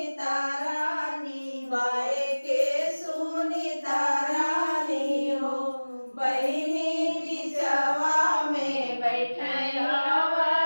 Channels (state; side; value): inverted; both; correlation -1.00